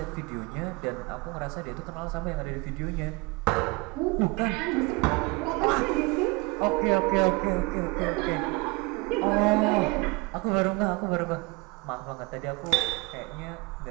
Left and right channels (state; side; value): quieter; left; 26.5 dB